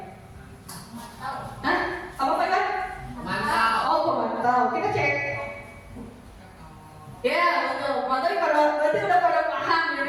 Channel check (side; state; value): both; identical; correlation 1.00